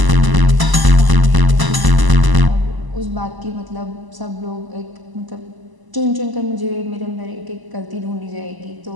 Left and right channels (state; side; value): late; left; 1.0 ms